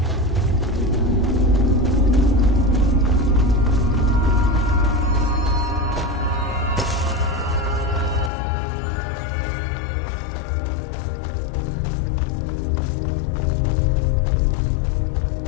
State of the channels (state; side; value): drops out; right; at 8.3 s